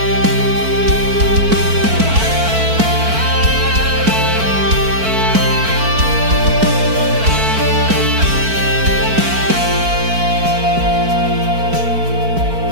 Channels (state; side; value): late; left; 4.5 ms